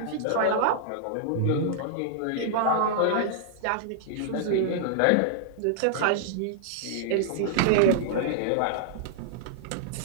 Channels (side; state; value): both; different; correlation -0.01